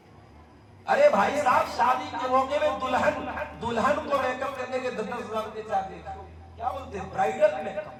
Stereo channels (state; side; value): identical; both; correlation 1.00